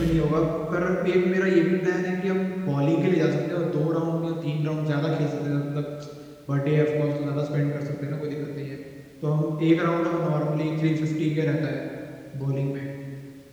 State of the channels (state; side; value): identical; both; correlation 1.00